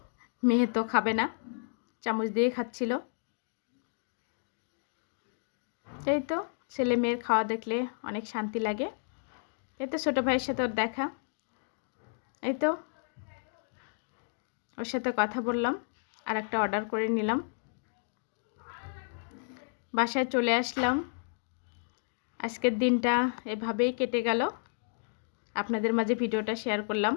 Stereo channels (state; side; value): silent; right; digital silence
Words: মেয়ে তো খাবে না, চামচ দিয়ে খাচ্ছিল। এই তো ছেলে মেয়ের খাওয়া দেখলে অনেক শান্তি লাগে। এই তো ছোটো ভাইয়ের সাথে ওর দেখা, এই তো ওর সাথে কথা বললাম, আর একটা অর্ডার করে নিলাম। বাসায় চলে আসলাম। আজকের দিনটা এভাবেই কেটে গেল। আপনাদের মাঝে ভিডিওটা শেয়ার করলাম,